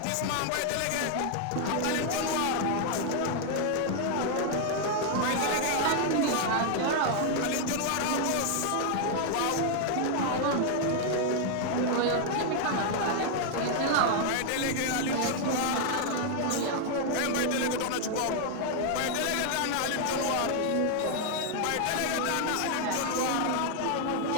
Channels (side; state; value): both; different; correlation 0.00